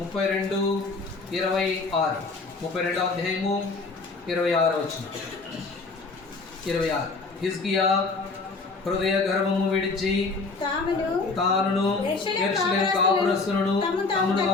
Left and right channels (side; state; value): right; quieter; 3.9 dB